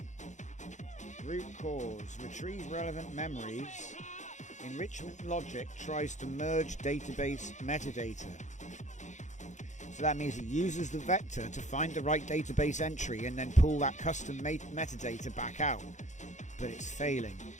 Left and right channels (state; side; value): late; right; 0.35 ms